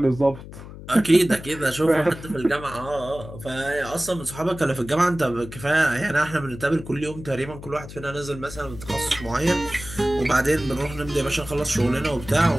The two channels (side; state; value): left; noise; hum, 14 dB below the sound